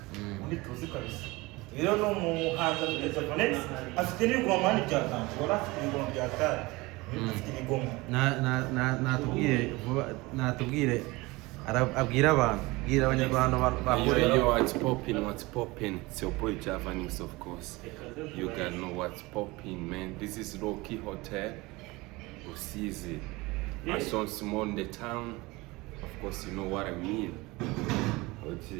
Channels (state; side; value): quieter; left; 22.4 dB